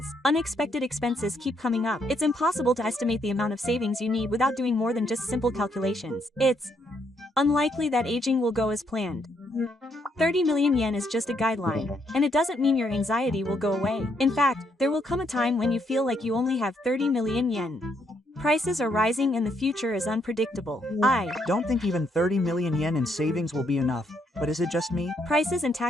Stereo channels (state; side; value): normal; both; correlation 0.74